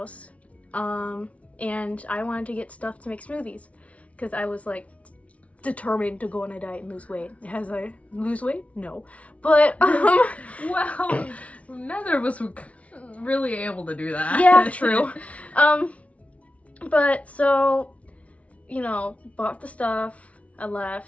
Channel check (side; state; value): right; late; 0.065 ms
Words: and I wanted to get stuff to make smoothies, because I was like determined to go on a diet and lose weight. As I lose weight? No. But, well, neither of us were really able to do that. Yeah, true. But so, bought the stuff, I